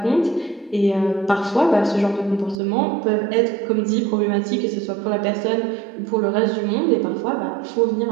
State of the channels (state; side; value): drops out; left; at 2.6 s